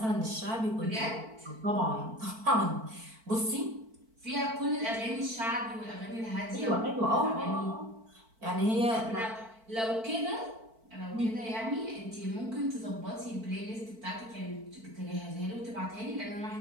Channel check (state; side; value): late; left; 4.5 ms